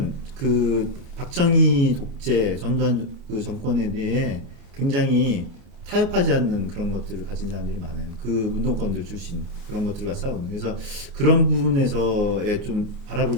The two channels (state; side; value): late; left; 29 ms